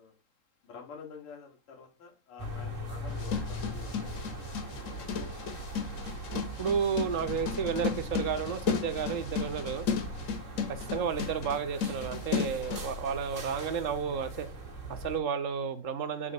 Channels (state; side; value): late; right; 3.8 ms